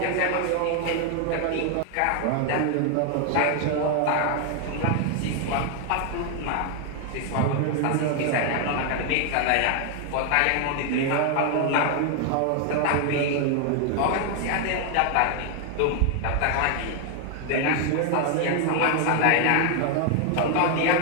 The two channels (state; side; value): different; both; correlation 0.00